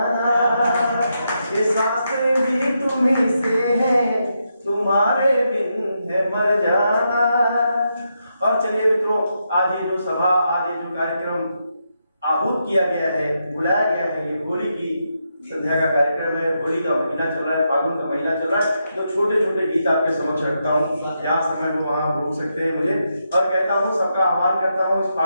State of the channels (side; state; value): both; inverted; correlation -0.83